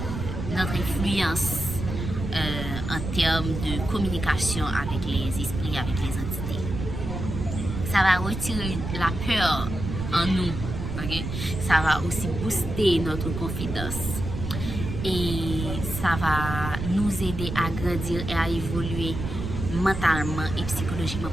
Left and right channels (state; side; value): noise; right; rumble, 5 dB below the sound